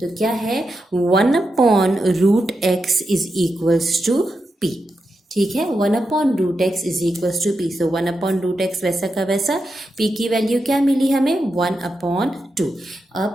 तो क्या है, 1/√x is equals to p। ठीक है, 1/√x is equals to p. So 1/√x वैसा का वैसा, p की वैल्यू क्या मिली हमें 1/2।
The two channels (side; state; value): both; normal; correlation 0.87